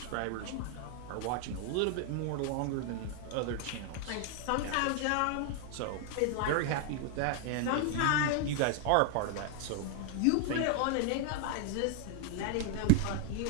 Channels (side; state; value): both; different; correlation 0.00